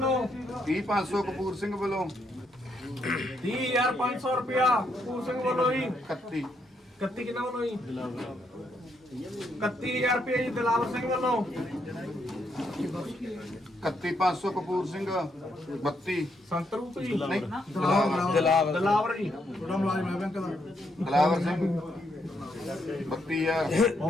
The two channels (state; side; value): normal; both; correlation 0.76